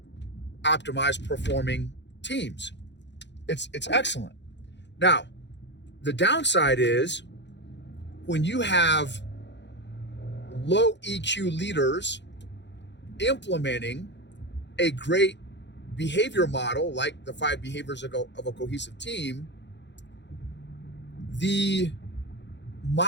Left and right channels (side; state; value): right; late; 0.52 ms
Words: optimized performing teams. It's excellent. Now, the downside is when you have low EQ leaders implementing a great behavior model like the 5 Behaviors of a Cohesive Team, the